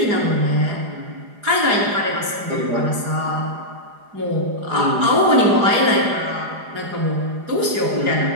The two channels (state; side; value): late; left; 4.9 ms